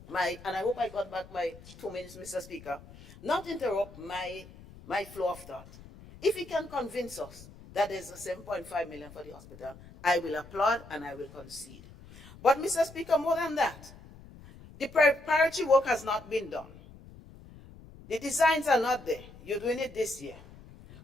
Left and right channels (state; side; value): noise; left; rumble, 19 dB below the sound